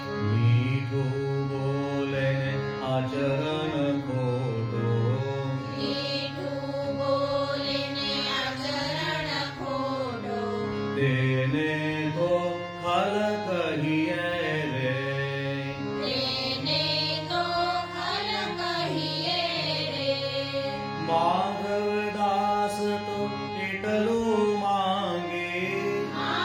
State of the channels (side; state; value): both; identical; correlation 1.00